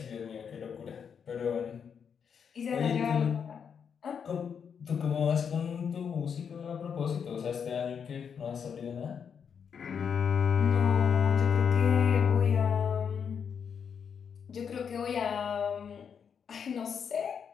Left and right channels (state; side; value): quieter; right; 7.0 dB